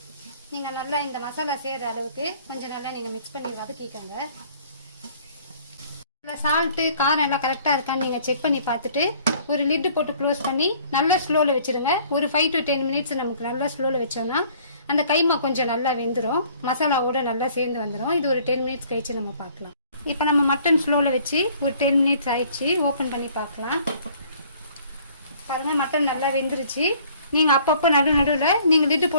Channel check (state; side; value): inverted; both; correlation -0.56